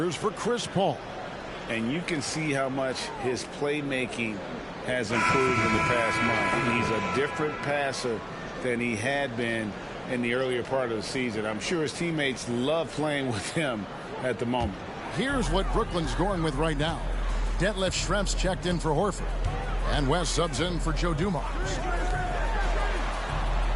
for Chris Paul. And you can see how much his playmaking has improved in the past month. He's a different passer than he had been in the earlier part of the season. I'm sure his teammates love playing with him at the moment. Here's what Brooklyn's going with right now. Detlef Schrempf's checked in for Horford. And West subs in for Joe Dumars.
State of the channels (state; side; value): identical; both; correlation 1.00